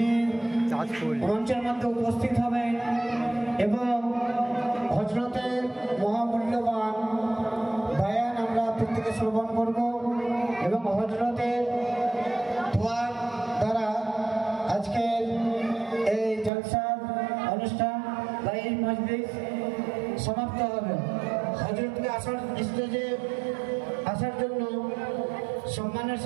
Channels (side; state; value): left; drops out; at 16.5 s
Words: মঞ্চের মধ্যে উপস্থিত হবেন এবং হযরতের মহামূল্যবান বয়ান আমরা প্রত্যেকে শ্রবণ করব এবং হযরতের দোয়ার দ্বারা আজকের এই জলসার অনুষ্ঠান বা এই মজলিস সমাপ্ত হবে। হযরতকে স্টেজে আসার জন্য সম্মানের